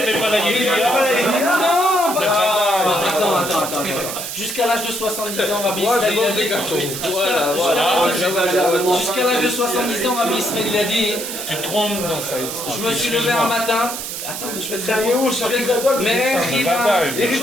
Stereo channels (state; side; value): noise; right; hiss, 6 dB below the sound